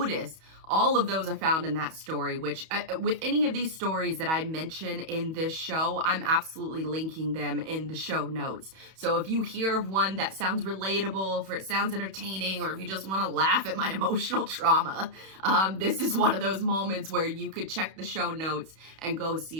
All of those are found in that story, which with any of these stories that I mention in this show, I'm absolutely linking them in the show notes. So if you hear of one that sounds relatable, if it sounds entertaining, or if you just want to laugh at my emotional trauma, this is one of those moments where you could check the show notes and go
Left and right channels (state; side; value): late; left; 31 ms